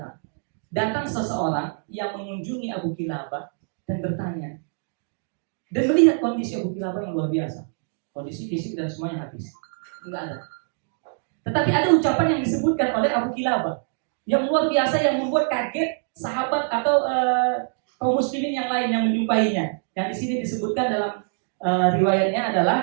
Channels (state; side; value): silent; left; 59 dB below the other